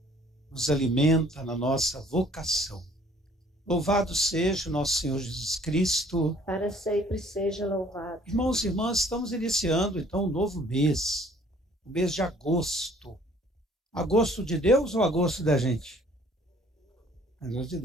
nos alimenta na nossa vocação. Louvado seja o nosso Senhor Jesus Cristo. Para sempre seja louvado. Irmãos e irmãs, estamos iniciando então um novo mês, o mês de agosto. Agosto de Deus ou agosto da gente? Agosto de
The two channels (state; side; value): normal; both; correlation 0.57